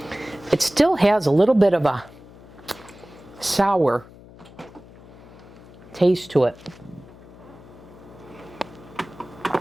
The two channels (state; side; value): noise; left; hum, 20 dB below the sound